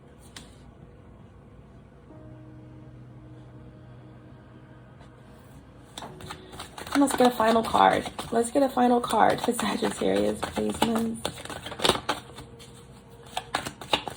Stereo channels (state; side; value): identical; both; correlation 1.00